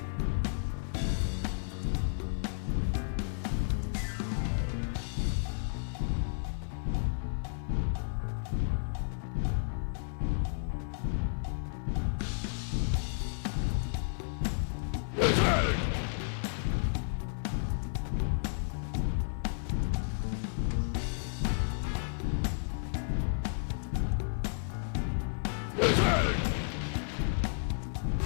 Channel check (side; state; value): right; silent; 56 dB below the other